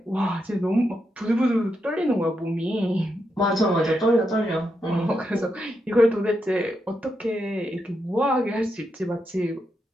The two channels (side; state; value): both; normal; correlation 0.83